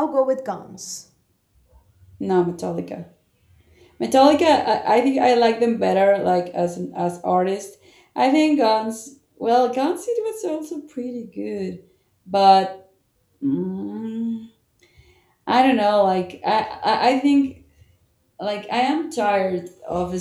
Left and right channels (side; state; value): both; identical; correlation 1.00